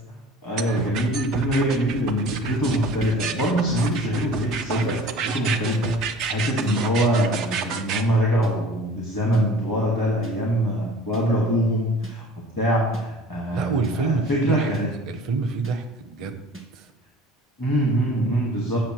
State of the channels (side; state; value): both; normal; correlation 0.46